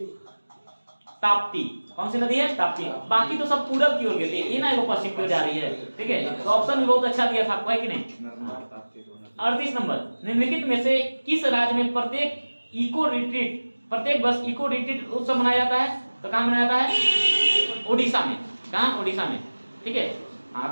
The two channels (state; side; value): inverted; both; correlation -1.00